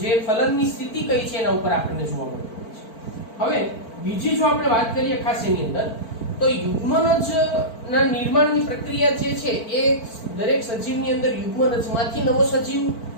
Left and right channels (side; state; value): right; late; 4.5 ms